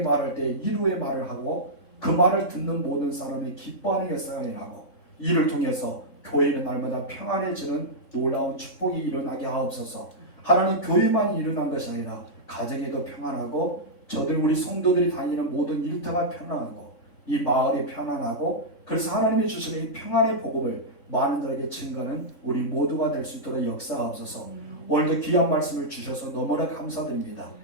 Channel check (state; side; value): late; right; 3.6 ms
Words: 때 이루의 말을 하고 그 말을 듣는 모든 사람이 기뻐하는 역사가 일어나고 이를 통해서 교회는 날마다 평안해지는 놀라운 축복이 일어나게 하옵소서. 하나님 교회만 일어난 것이 아니라 가정에도 평안하고 저들 우리 성도들이 다니는 모든 일터가 평안하고 이 마을이 평안하고 그래서 하나님이 주시는 이 평안의 복음을 많은 자에게 증거하는 우리 모두가 될 수 있도록 역사하옵소서. 오늘도 귀한 말씀을 주셔서 너무나 감사드립니다.